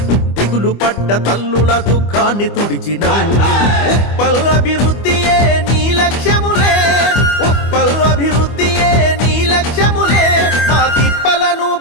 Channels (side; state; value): right; late; 25 ms